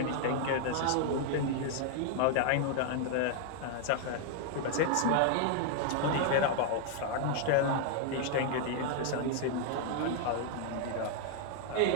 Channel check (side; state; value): both; different; correlation 0.00